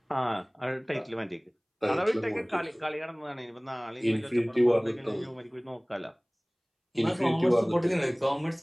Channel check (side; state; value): both; identical; correlation 1.00